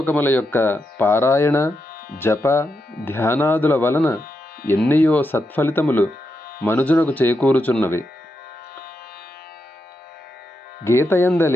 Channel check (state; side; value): normal; both; correlation 0.85